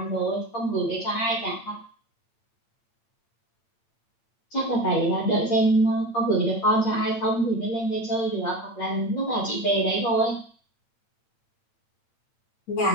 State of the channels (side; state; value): right; late; 8.6 ms